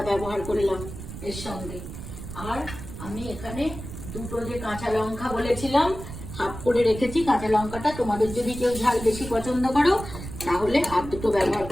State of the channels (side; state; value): right; noise; rumble, 10 dB below the sound